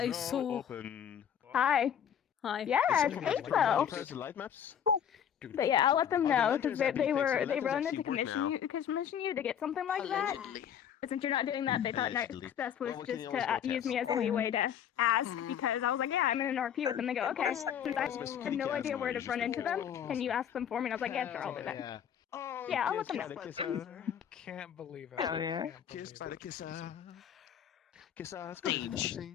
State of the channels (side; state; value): right; quieter; 9.0 dB